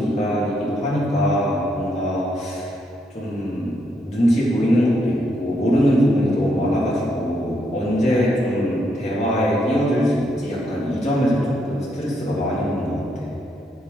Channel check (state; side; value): normal; both; correlation 0.77